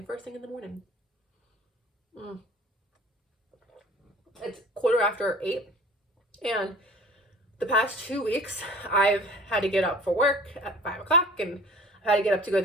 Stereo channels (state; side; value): normal; both; correlation 0.44